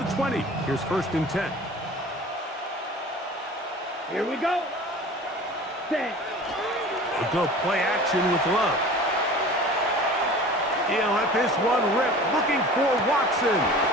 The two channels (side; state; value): both; normal; correlation 0.41